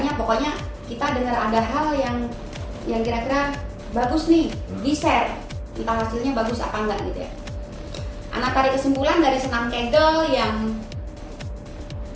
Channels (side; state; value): both; identical; correlation 1.00